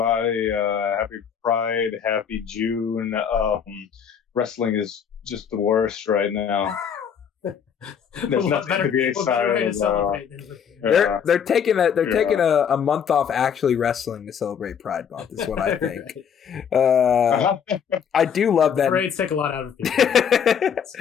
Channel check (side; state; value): right; quieter; 7.6 dB